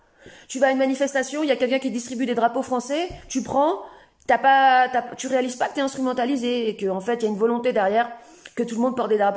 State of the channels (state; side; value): identical; both; correlation 1.00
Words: Tu vas à une manifestation, il y a quelqu'un qui distribue des drapeaux français, tu prends, tu réalises pas que t'es instrumentalisé, et qu'en fait, il y a une volonté derrière que tout le monde porte des